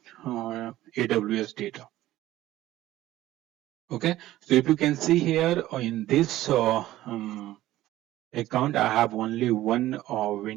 AWS data. Okay, so if you can see here in this account, I have only one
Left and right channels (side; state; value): left; quieter; 15.2 dB